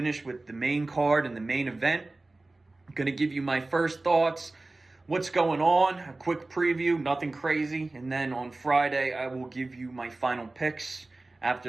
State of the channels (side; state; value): left; quieter; 3.1 dB